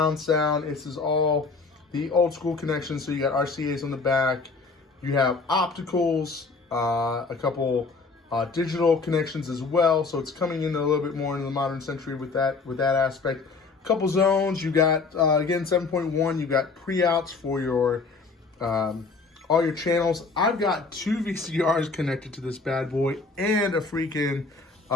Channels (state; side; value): quieter; right; 4.2 dB